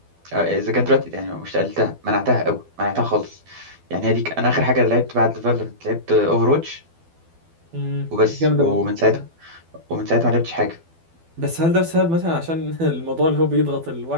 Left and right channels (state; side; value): late; left; 12 ms